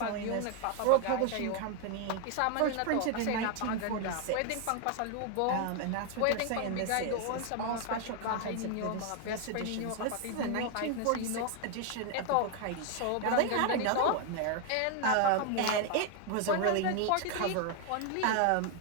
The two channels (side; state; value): both; different; correlation 0.01